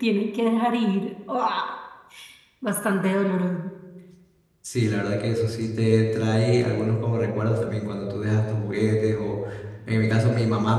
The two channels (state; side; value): identical; both; correlation 1.00